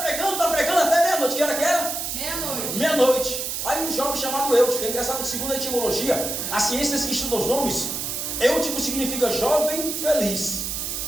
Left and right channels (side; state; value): right; noise; hiss, 3 dB below the sound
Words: até meia-noite. Que hora que era? Meia-noite. Meia-noite. Aí um jovem chamado Eutico, é engraçado que segundo a etimologia, as ciências que estudam os nomes, Eutico significa jovem feliz.